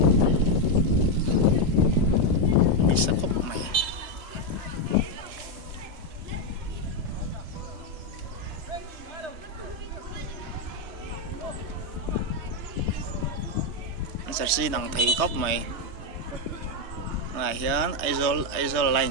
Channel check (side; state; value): left; late; 3.2 ms